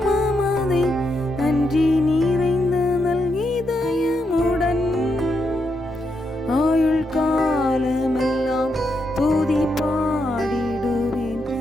நன்றி நிறைந்த இதயமுடன். ஆயுள் காலமெல்லாம் துதி பாடிடுவேன்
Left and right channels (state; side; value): normal; both; correlation 0.81